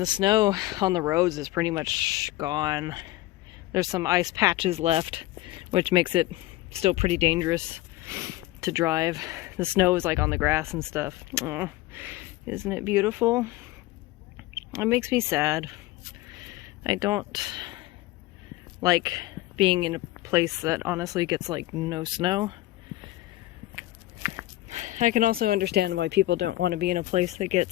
snow on the roads is pretty much gone. There's some ice patches left, which makes it still pretty dangerous to drive. The snow is like on the grass and stuff. Oh, isn't it beautiful? It makes me sad. I don't like being in a place that honestly gets like no snow. I can also understand why people don't want to be in a place that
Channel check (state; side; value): quieter; right; 17.1 dB